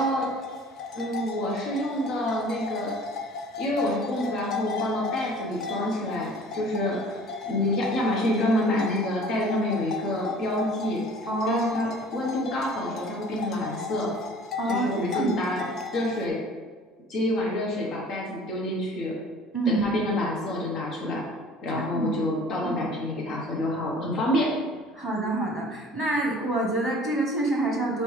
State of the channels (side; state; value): both; normal; correlation 0.48